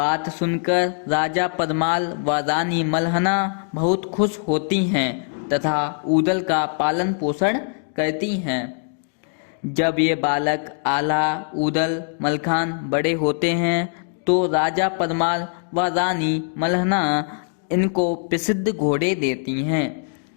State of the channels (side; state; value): right; silent; 59 dB below the other